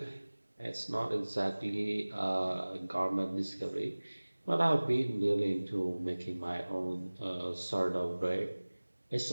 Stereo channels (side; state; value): both; inverted; correlation -1.00